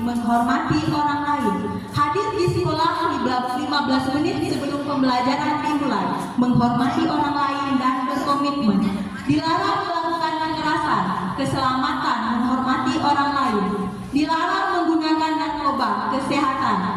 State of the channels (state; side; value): identical; both; correlation 1.00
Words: menghormati orang lain. Hadir di sekolah 15 menit sebelum pembelajaran dimulai, menghormati orang lain dan berkomitmen. Dilarang melakukan kekerasan, keselamatan, menghormati orang lain. Dilarang menggunakan narkoba, kesehatan,